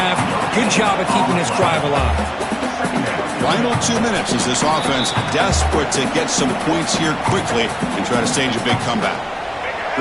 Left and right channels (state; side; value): identical; both; correlation 1.00